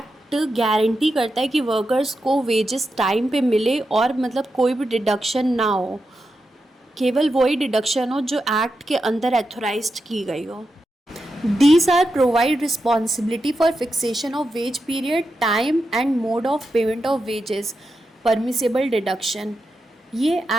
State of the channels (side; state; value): both; normal; correlation 0.88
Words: guarantee करता है कि workers को wages time पे मिले और मतलब कोई भी डिडक्शन ना हो, केवल वही डिडक्शन हो जो एक्ट के अंदर एथोराइज्ड की गई हो। These are provide responsibility for fixation of wage period, time and mode of payment of wages, permissible deduction। ये